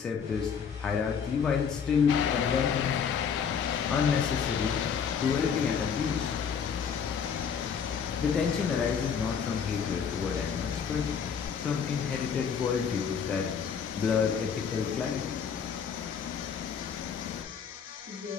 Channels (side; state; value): right; quieter; 6.9 dB